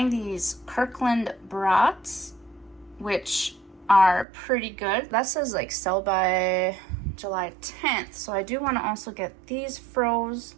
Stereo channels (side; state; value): left; drops out; at 4.2 s